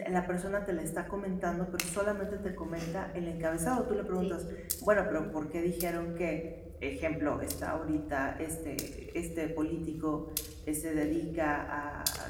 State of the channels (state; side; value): identical; both; correlation 1.00